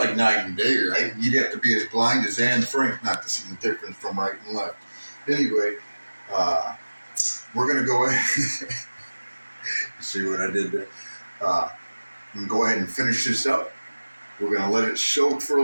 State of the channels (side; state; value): both; inverted; correlation -1.00